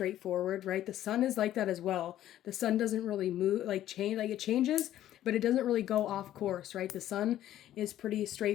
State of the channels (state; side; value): quieter; right; 12.6 dB